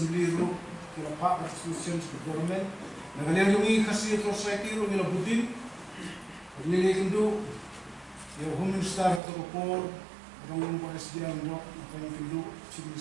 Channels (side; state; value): left; drops out; at 9.2 s